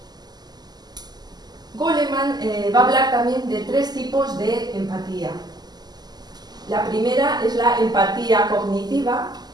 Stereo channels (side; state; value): left; late; 0.20 ms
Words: Goleman va a hablar también de 3 tipos de empatía. La primera es la empatía cognitiva